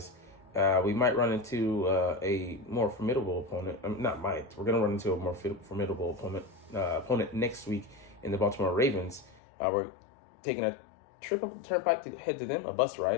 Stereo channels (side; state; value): right; drops out; at 9.4 s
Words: We might run into a more formidable opponent. Not might. We're going to run into a more formidable opponent next week in the Baltimore Ravens. We're taking a trip up the turnpike to head to them, a bus